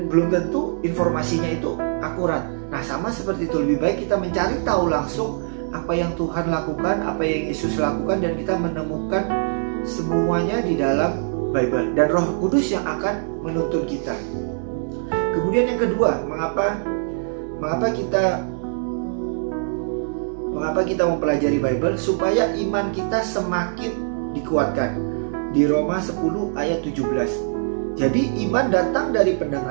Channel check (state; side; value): silent; left; digital silence